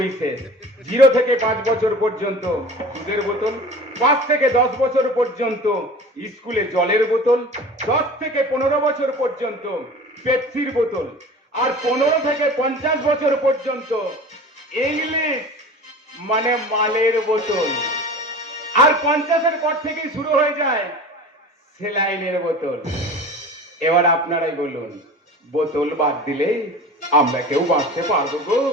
শেষ। 0 থেকে 5 বছর পর্যন্ত দুধের বোতল, 5 থেকে 10 বছর পর্যন্ত স্কুলে জলের বোতল, 10 থেকে 15 বছর পর্যন্ত পেপসির বোতল, আর 15 থেকে 50 বছর পর্যন্ত ইংলিশ মানে মালের বোতল, আর 50-এর পর থেকেই শুরু হয়ে যায় সেলাইনের বোতল। এবার আপনারাই বলুন, বোতল বাদ দিলে আমরা কেউ বাঁচতে পারবো গো?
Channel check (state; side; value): normal; both; correlation 0.38